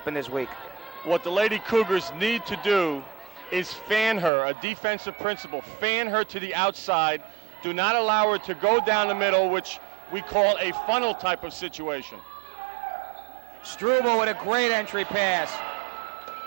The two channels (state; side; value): drops out; left; at 4.3 s